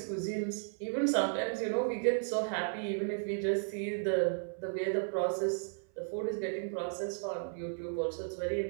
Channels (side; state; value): left; silent; 55 dB below the other